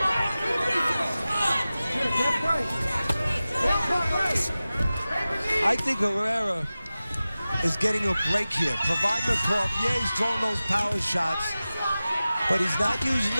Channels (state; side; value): inverted; both; correlation -0.96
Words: I think Herrera is getting a break here. Provodnikov, yeah, he's throwing those power shots, but he's not using